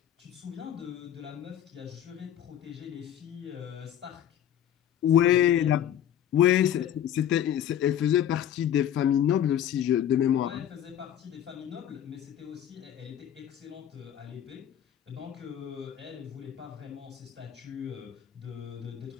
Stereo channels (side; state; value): right; quieter; 10.4 dB